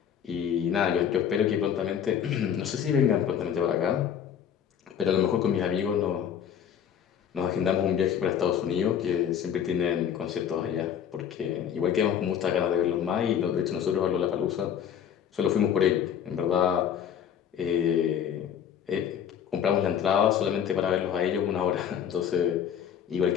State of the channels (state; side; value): quieter; right; 8.8 dB